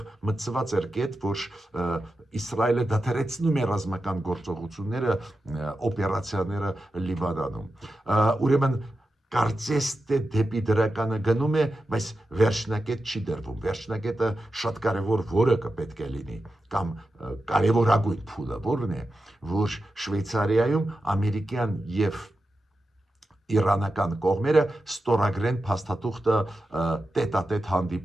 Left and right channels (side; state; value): both; normal; correlation 0.91